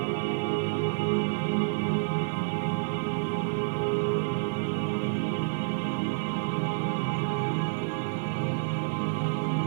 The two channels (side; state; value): left; silent; 59 dB below the other